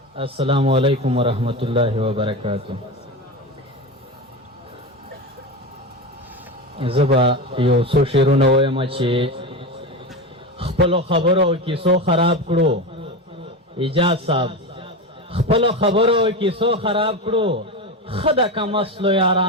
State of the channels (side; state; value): both; normal; correlation 0.21